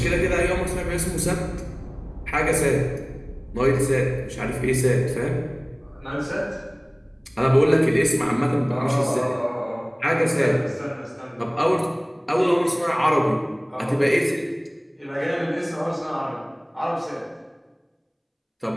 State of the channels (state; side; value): identical; both; correlation 1.00